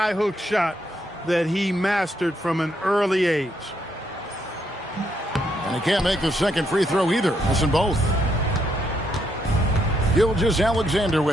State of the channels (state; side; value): normal; both; correlation 0.76